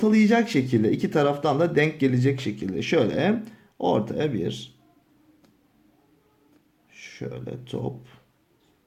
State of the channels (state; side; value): identical; both; correlation 1.00